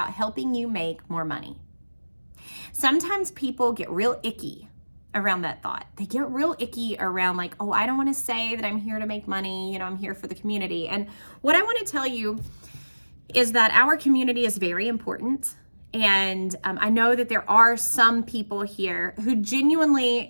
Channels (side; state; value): both; inverted; correlation -1.00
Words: helping you make more money. Sometimes people get real icky around that thought. They get real icky around like, oh, I don't want to say that I'm here to make money. I'm here for the community. And what I want to tell you is that our community is very important. And I know that there are some people here who